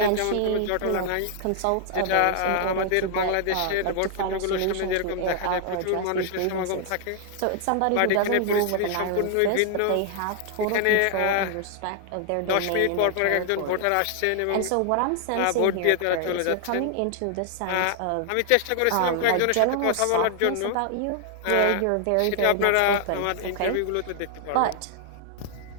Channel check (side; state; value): both; different; correlation 0.00